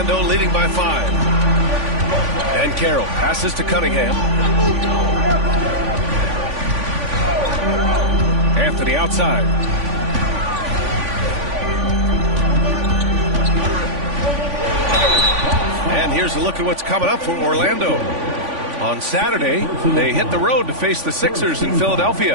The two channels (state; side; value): late; left; 3.5 ms